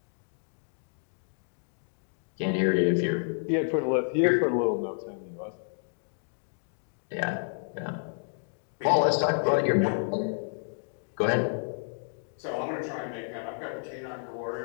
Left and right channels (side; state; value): right; silent; digital silence